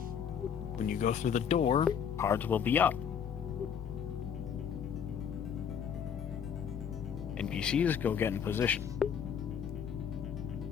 when you go through the door, cards will be up. NPCs go get in position.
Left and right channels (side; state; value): right; quieter; 7.7 dB